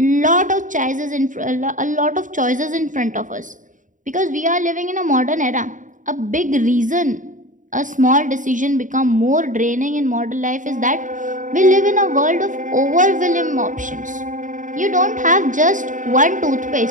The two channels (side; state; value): left; late; 0.37 ms